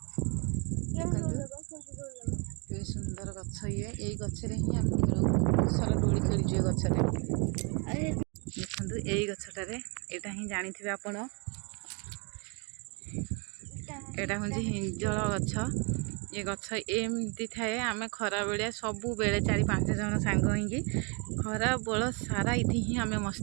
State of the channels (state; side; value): quieter; left; 32.6 dB